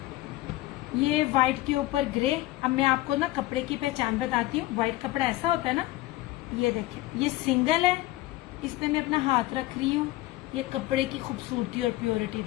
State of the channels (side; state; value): right; quieter; 17.5 dB